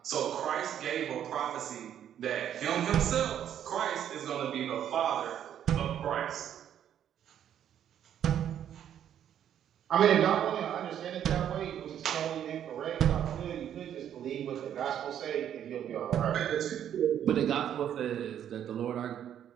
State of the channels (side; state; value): left; quieter; 9.9 dB